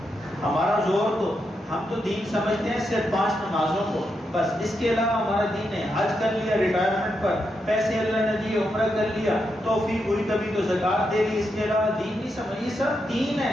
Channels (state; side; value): normal; both; correlation 0.84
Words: ہمارا زور تو ہم تو دین سمجھتے ہیں صرف 5 نمازوں کو، بس اس کے علاوہ ہمارا دین ہے۔ حج کر لیا ریٹائرمنٹ پر، پیسے اللہ نے دیے، عمرہ کر لیا، توفیق ہوئی کبھی تو زکوٰۃ دے دی، اس کے علاوہ دین نہیں سمجھ، یہ سب دین